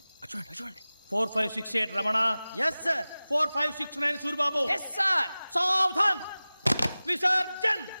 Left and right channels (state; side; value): inverted; both; correlation -0.98